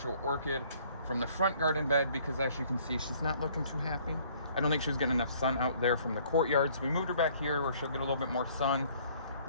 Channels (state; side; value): inverted; both; correlation -0.59